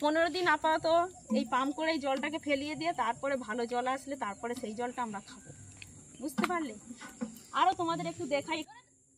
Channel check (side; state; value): both; identical; correlation 1.00